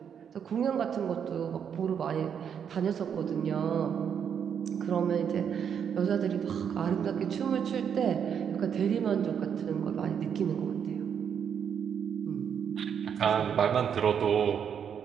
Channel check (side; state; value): left; quieter; 7.8 dB